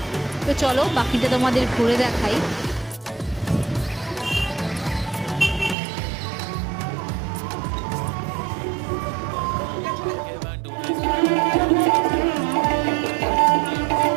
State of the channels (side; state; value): left; drops out; at 5.8 s